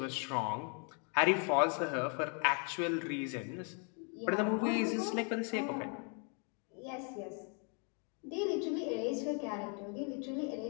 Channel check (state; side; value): quieter; right; 39.0 dB